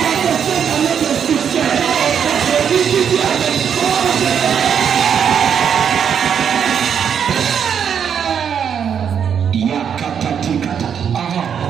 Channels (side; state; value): left; quieter; 7.8 dB